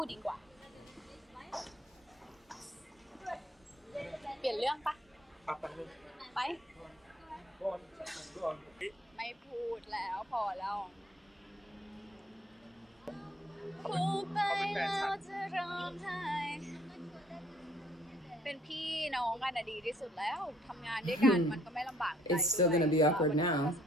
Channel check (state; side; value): normal; both; correlation 0.63